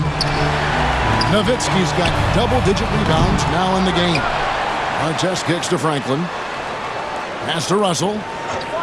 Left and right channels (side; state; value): both; identical; correlation 1.00